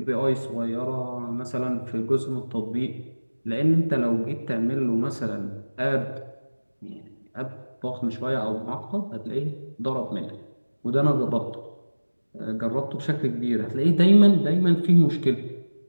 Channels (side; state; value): both; inverted; correlation -1.00